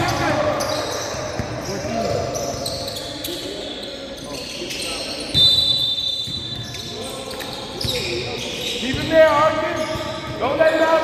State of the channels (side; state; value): both; identical; correlation 1.00